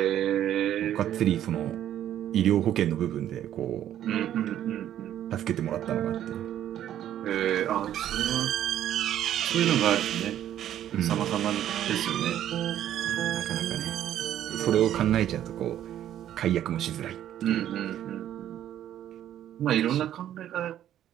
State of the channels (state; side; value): quieter; left; 11.4 dB